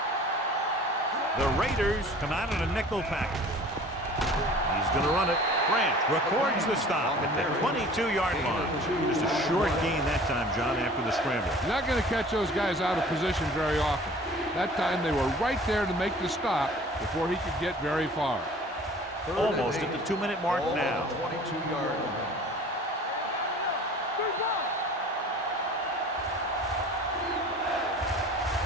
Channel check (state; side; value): normal; both; correlation 0.46